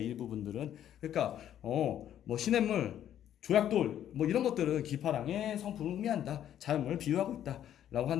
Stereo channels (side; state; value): right; quieter; 10.8 dB